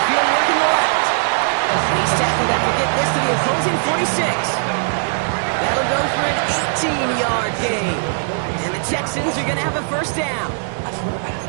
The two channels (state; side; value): silent; left; 66 dB below the other